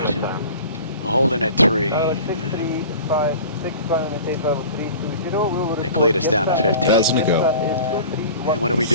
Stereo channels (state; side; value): inverted; both; correlation -0.41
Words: We're holding at 3. They cleared us down to 15. Doesn't it go? And what are we